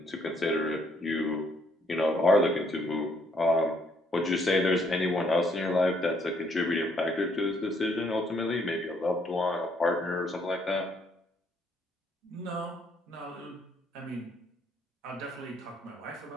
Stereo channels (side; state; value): both; normal; correlation 0.68